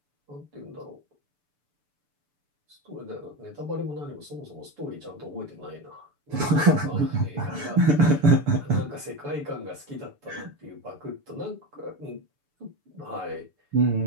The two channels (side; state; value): left; late; 6.9 ms